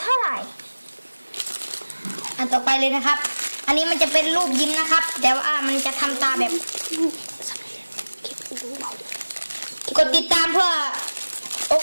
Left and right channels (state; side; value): inverted; both; correlation -1.00